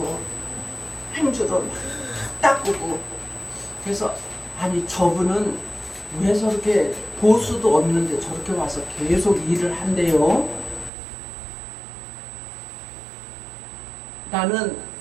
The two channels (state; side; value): drops out; left; at 10.9 s